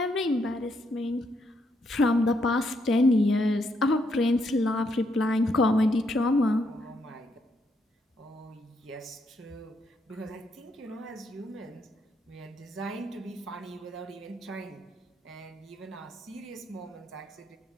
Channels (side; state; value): both; normal; correlation 0.76